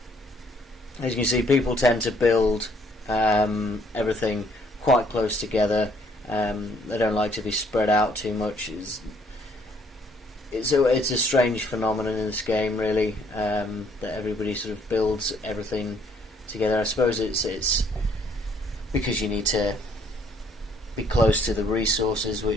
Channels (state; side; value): normal; both; correlation 0.64